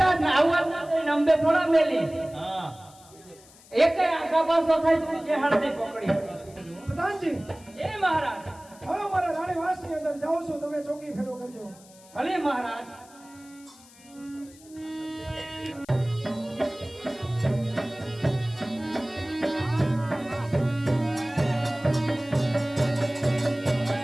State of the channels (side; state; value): left; noise; hiss, 24 dB below the sound